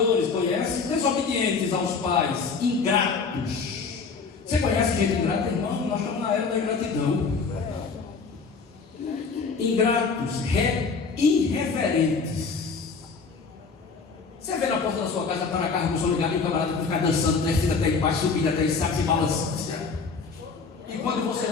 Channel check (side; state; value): right; quieter; 4.9 dB